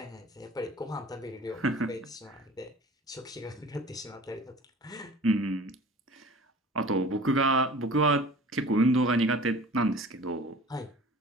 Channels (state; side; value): normal; both; correlation 0.44